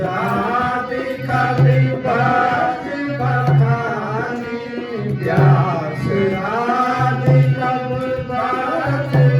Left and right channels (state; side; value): identical; both; correlation 1.00